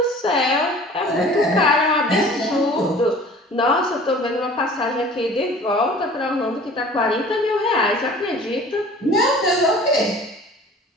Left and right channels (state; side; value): normal; both; correlation 0.46